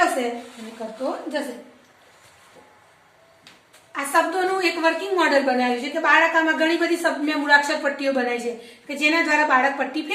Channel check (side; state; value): both; identical; correlation 1.00